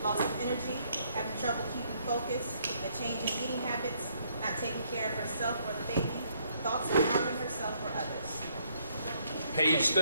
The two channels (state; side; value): inverted; both; correlation -0.69